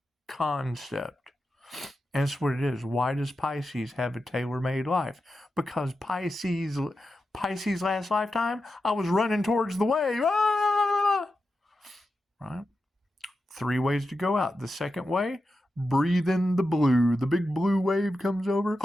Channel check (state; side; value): normal; both; correlation 0.90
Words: concept. And that's what it is. Why does Pisces have a tailor-made life? Because Pisces last lifetime, I was running towards the wave. Right? 3 ways to go out. The second way, breathe in the blue. The big blue wave comes over.